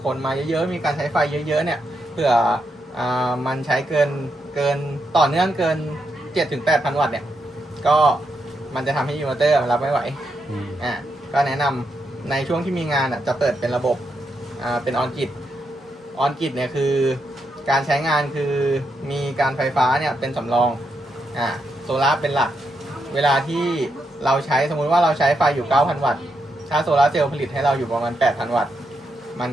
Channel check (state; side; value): normal; both; correlation 0.82